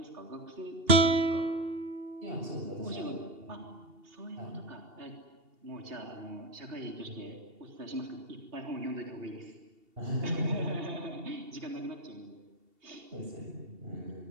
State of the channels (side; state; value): left; late; 2.7 ms